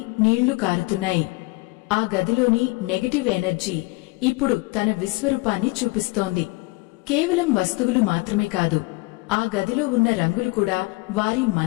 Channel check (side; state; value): right; quieter; 24.7 dB